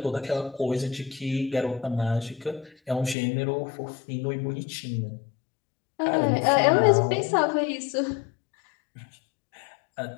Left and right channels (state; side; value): drops out; right; at 3.2 s